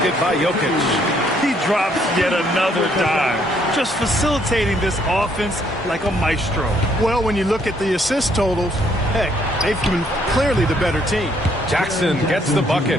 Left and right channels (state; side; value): normal; both; correlation 0.68